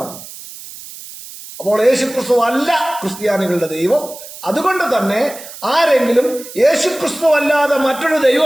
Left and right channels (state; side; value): noise; right; hiss, 15 dB below the sound